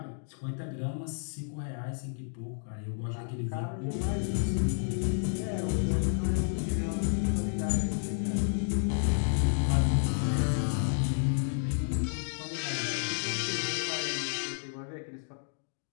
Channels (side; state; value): right; silent; digital silence